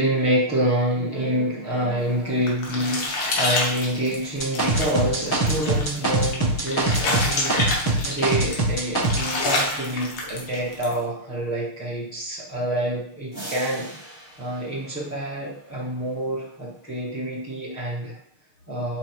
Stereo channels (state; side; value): late; right; 6.8 ms